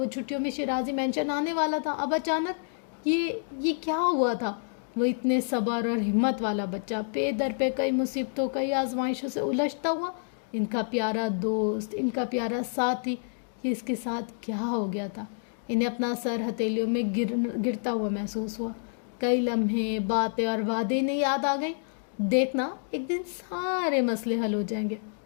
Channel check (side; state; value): right; silent; digital silence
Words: چھٹیوں میں شیرازی مینشن آنے والا تھا۔ اب اچانک یہ کیا ہوا تھا؟ وہ اتنے صبر اور ہمت والا بچہ، پے در پہ کئی مصیبتوں، کئی آزمائشوں سے الجھتا ہوا، ان کا پیارا دوست، ان کا پیارا ساتھی، یہ اس کے ساتھ کیا ہو گیا تھا؟ انہیں اپنا سر ہتھیلیوں میں گرتا ہوا محسوس ہوا۔ کئی لمحے، باتیں اور وعدے انہیں یاد آ گئیں۔ دیکھنا، ایک دن سارے مسئلے حل ہو جائیں گے،